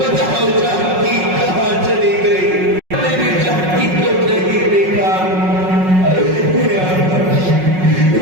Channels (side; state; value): left; late; 5.4 ms